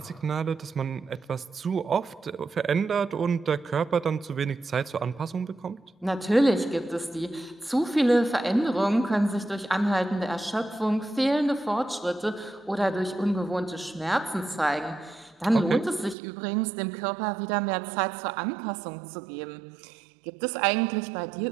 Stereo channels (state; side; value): drops out; left; at 16.2 s